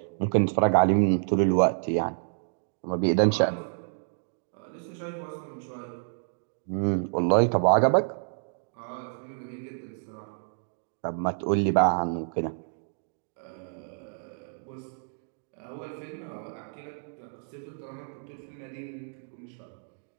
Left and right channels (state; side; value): silent; left; digital silence